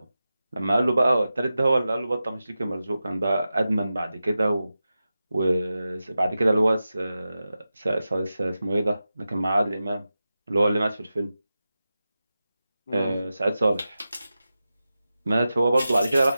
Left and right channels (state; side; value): inverted; both; correlation -0.92